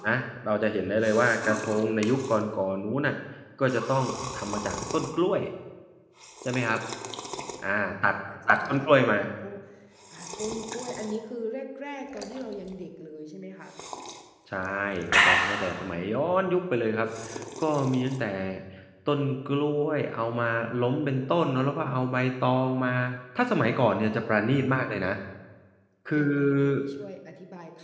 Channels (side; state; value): both; identical; correlation 1.00